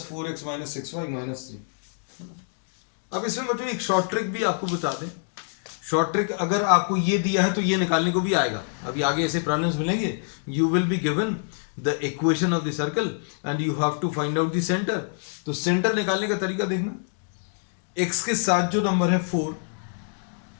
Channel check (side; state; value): right; silent; digital silence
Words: 4x minus 6y minus 3. अब इसमें बच्चों एक शॉर्ट ट्रिक भी आपको बता दें. शॉर्ट ट्रिक अगर आपको ये दिया है तो ये निकालने को भी आएगा. अभी आगे ऐसे प्रॉब्लम्स मिलेंगे. You will be given the equation of the circle and you have to find out the centre. तो सेंटर निकालने का तरीका देखना. x के साथ जो नंबर है 4